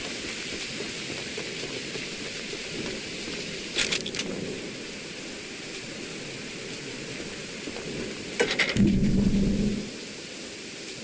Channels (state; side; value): identical; both; correlation 1.00